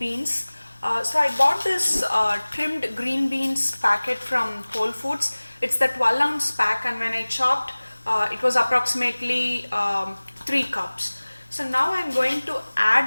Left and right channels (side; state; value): both; inverted; correlation -1.00